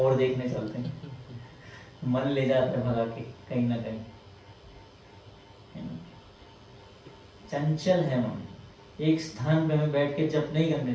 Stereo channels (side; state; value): both; identical; correlation 1.00